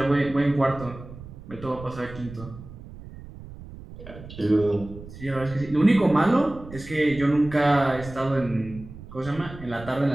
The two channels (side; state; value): right; noise; rumble, 15 dB below the sound